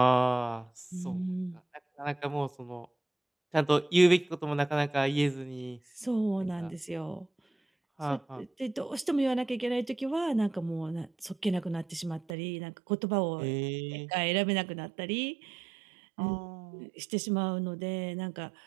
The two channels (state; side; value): drops out; left; at 12.4 s